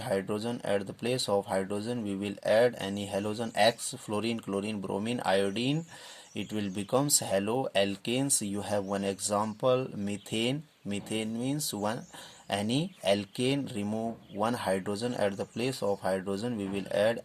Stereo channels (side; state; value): both; identical; correlation 1.00